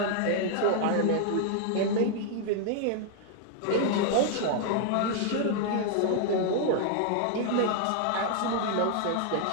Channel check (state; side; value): different; both; correlation 0.00